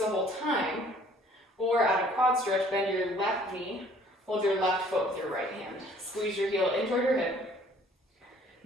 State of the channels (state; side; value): normal; both; correlation 0.57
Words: whole time, or at a quad stretch, bend your left knee, hold your left foot with your right hand. Squeeze your heel in toward your hip.